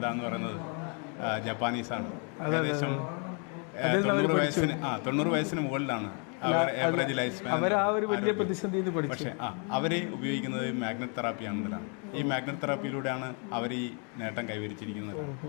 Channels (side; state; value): right; quieter; 38.3 dB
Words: എന്ന് പറയുന്നത് ജപ്പാനീസാണ്. ഏകദേശം 90 വയസ്സിന് മുകളിലാണ് ആവറേജ് ലൈഫ് സ്പാൻ. പക്ഷേ അവർ ഉപയോഗിക്കുന്നത് മാഗ്നറ്റ് തെറാപ്പിയാണെന്നതാണ്. ഈ മാഗ്നറ്റ് തെറാപ്പിയിലൂടെയാണ് അവർ ഈ നേട്ടം കൈവരിച്ചിരിക്കുന്നത്.